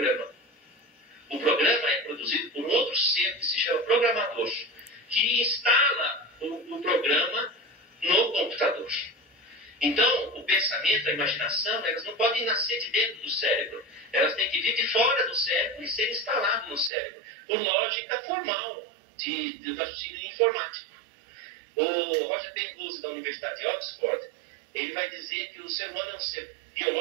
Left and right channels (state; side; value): drops out; left; at 16.9 s